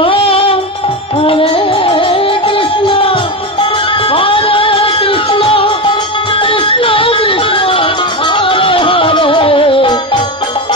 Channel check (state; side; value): normal; both; correlation 0.16